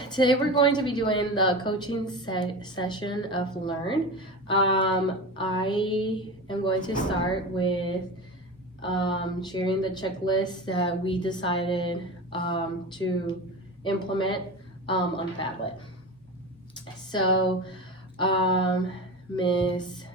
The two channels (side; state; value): both; normal; correlation 0.28